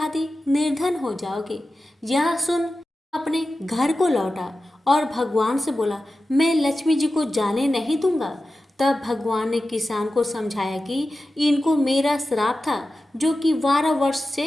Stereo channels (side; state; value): both; normal; correlation 0.93